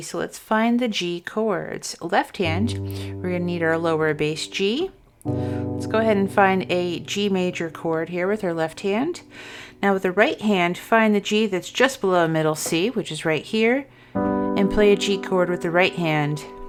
So let's find the G chords. Left hand, we're going to need our lower bass G. Let's go ahead and find a G major chord here with our left hand. Now with the right hand, find the G that's just below middle C, which is right here, and play a G chord with the right hand.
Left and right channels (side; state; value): both; identical; correlation 1.00